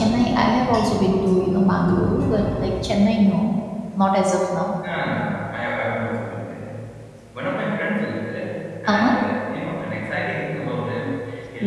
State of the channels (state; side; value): identical; both; correlation 1.00